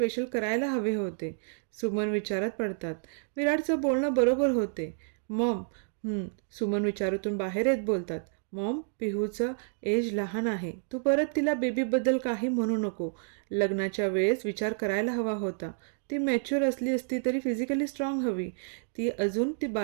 करायला हवे होते. सुमन विचारात पडतात. विराटचं बोलणं बरोबर होते. मॉम, सुमन विचारातून बाहेर येत बोलतात. मॉम, पिहूचं एज लहान आहे. तू परत तिला बेबीबद्दल काही म्हणू नको. लग्नाच्या वेळेस विचार करायला हवा होता. ती मॅच्युअर असली असती तरी फिजिकली स्ट्रॉंग हवी. ती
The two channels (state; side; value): silent; left; 58 dB below the other